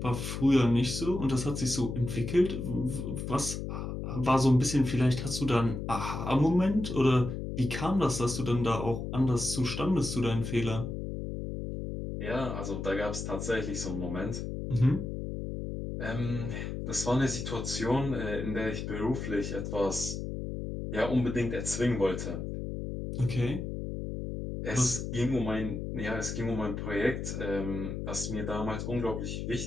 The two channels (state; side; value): noise; left; hum, 5 dB below the sound